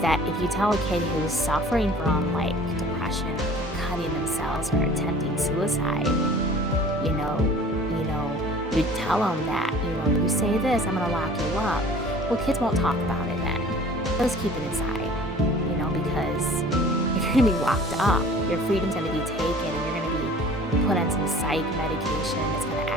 that if you tell a kid who's suffering from like depression, or cutting themselves, or attempting suicide, you tell them that, you say this, I'm gonna lock you up. Well, kids won't talk about it then. They'll just keep it inside, because if you're gonna be locked up, your freedom's gonna be taken, and you're gonna be put on some psych medication that's gonna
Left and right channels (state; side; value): normal; both; correlation 0.47